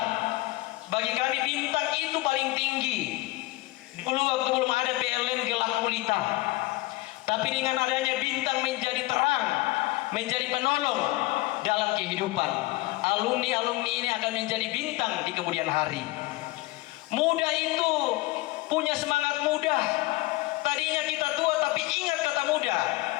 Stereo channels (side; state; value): right; quieter; 20.5 dB